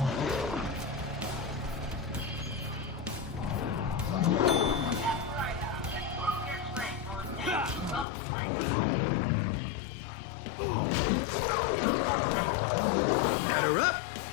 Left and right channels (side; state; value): right; drops out; at 8.1 s